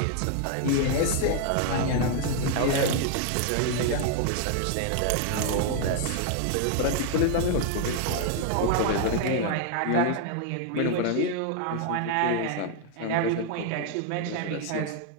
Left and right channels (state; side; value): different; both; correlation 0.00